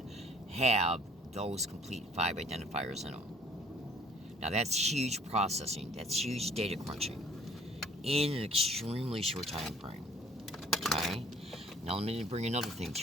have those complete 5 identifiers in them. Now that's huge processing, that's huge data crunching in an extremely short time frame. Okay? Now let me bring another thing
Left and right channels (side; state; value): both; normal; correlation 0.55